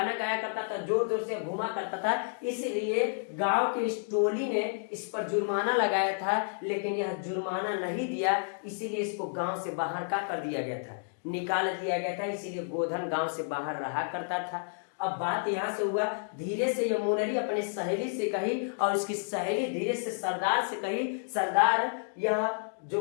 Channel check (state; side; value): silent; right; digital silence